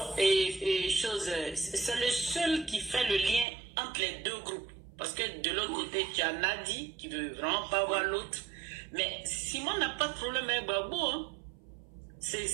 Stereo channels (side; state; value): left; drops out; at 3.5 s